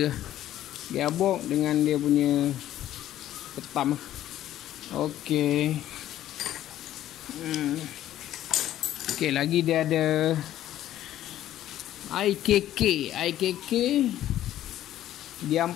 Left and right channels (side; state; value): right; quieter; 12.8 dB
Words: Gearbox dengan dia punya petam. Okay. Okay, lagi dia ada IKK dia